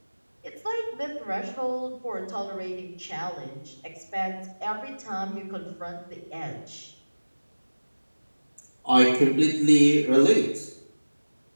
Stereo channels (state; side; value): inverted; both; correlation -1.00